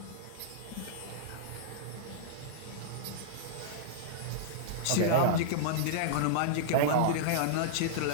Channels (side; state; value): both; different; correlation -0.02